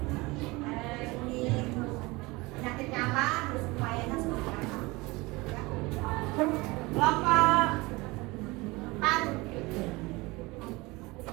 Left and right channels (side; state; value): left; quieter; 23.2 dB